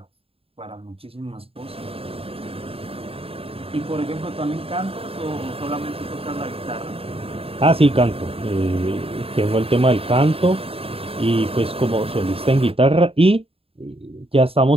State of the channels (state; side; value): late; left; 0.27 ms